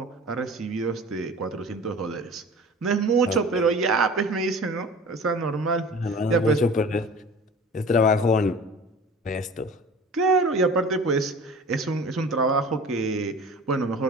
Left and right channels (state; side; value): normal; both; correlation 0.40